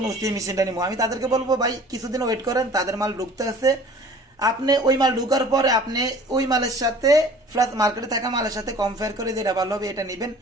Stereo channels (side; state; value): both; normal; correlation 0.47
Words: ওসি মেশিনটা নিবো। আমি তাদেরকে বলবো ভাই কিছুদিন ওয়েট করেন, তাদের মাল ঢুকতে আছে। আপনি ওই মাল ঢুকার পরে আপনি ওই মালের সাথে প্লাস মার্কেটে থাকা মালের সাথে কম্পেয়ার করে যেটা ভালো হবে এটা নিবেন।